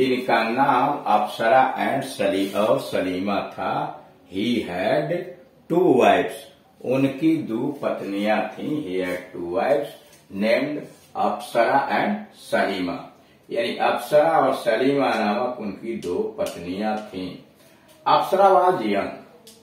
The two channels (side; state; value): both; identical; correlation 1.00